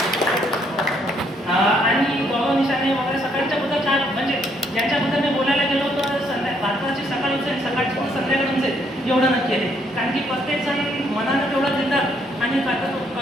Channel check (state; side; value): normal; both; correlation 0.70